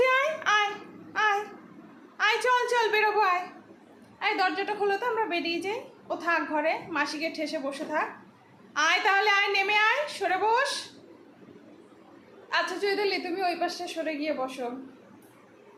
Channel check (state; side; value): identical; both; correlation 1.00